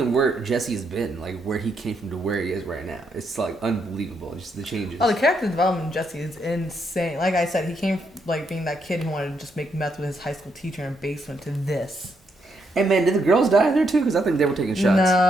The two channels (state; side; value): normal; both; correlation 0.78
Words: where Jesse's been, like where he came from to where he is right now, it's like unbelievable. Just the changes. Oh, the character development in Jesse is insane. Like I said, he came like being that kid who wanted to just make meth with his high school teacher in a basement to this. Hey man, did the girls die there too? Because I think they were taking shots.